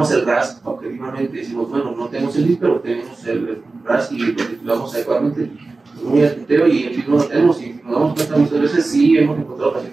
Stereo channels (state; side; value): quieter; left; 3.6 dB